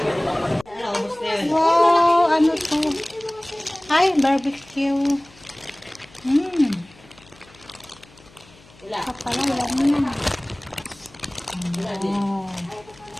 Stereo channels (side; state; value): left; noise; hum, 26 dB below the sound